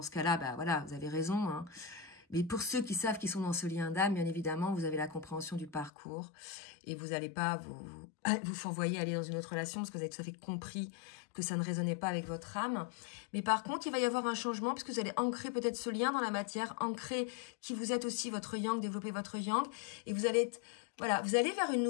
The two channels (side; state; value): right; drops out; at 5.9 s